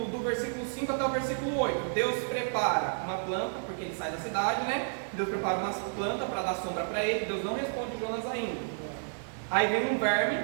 versículo 5 até o versículo 8. Deus prepara uma planta, porque ele sai da cidade, né? Deus prepara uma planta para dar sombra para ele. Deus não responde Jonas ainda. Aí vem um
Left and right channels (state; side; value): silent; left; digital silence